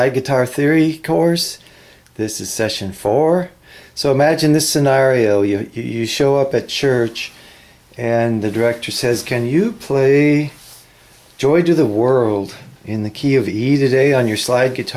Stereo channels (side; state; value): both; identical; correlation 1.00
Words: Guitar Theory course. This is session 4. So imagine this scenario. You show up at church and the director says, "Can you play Joy to the World in the key of E today on your slide